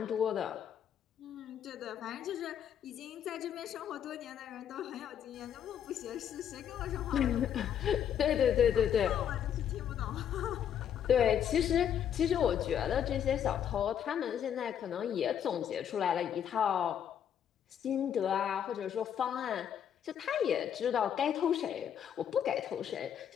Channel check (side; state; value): right; quieter; 9.1 dB